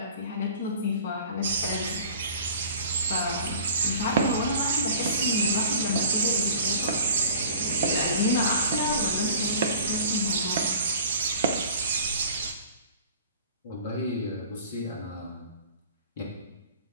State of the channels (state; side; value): inverted; both; correlation -0.44